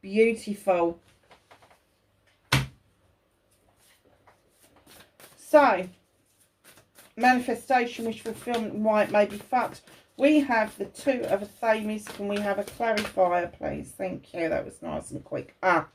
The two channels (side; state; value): both; identical; correlation 1.00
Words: Beautiful. So, manifestation, wish fulfillment, and why it may be fucked. We have the 2 of Affirmations. Can we have a clarifier, please? Thank you. That was nice and quick.